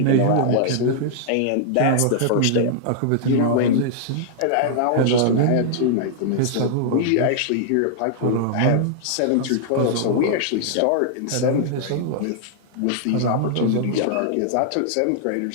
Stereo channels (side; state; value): both; different; correlation -0.01